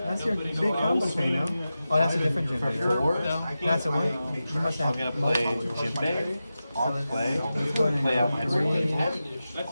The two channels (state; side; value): inverted; both; correlation -0.93